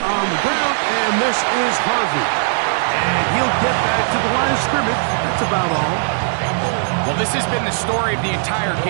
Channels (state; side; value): silent; left; 67 dB below the other